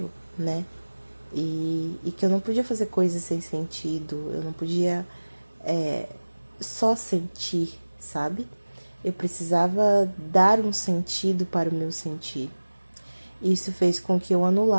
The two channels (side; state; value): both; inverted; correlation -1.00